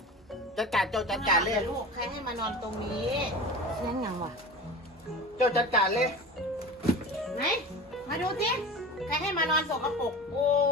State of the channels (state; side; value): normal; both; correlation 0.33